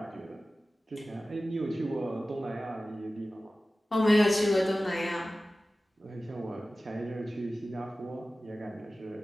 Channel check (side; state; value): both; normal; correlation 0.96